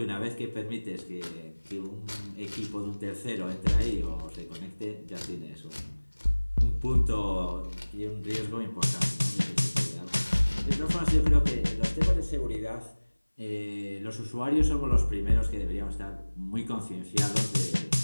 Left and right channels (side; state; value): both; inverted; correlation -1.00